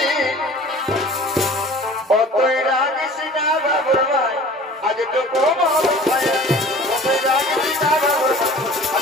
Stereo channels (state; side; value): normal; both; correlation 0.45